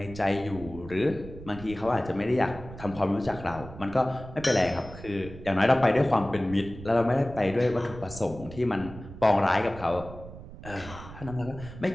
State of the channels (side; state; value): right; noise; rumble, 14 dB below the sound